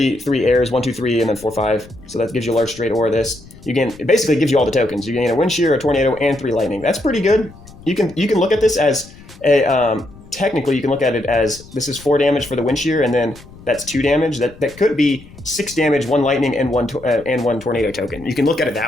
airs, 1, 2, 3, and then 4, 5. So that gives you a large straight or this. It basically gives you all the tokens. You gain a wind shear, a tornado, and 3 lightning. That's pretty good. You can look at this as a technically, you can look at it as this is 4 damage for the wind shear, and then that's 2 damage. That could be 6 damage, 1 lightning, and one tornado token. You can look at it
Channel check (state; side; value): noise; left; rumble, 21 dB below the sound